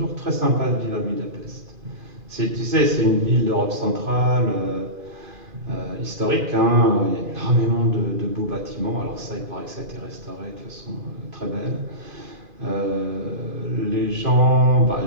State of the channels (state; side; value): late; left; 2.4 ms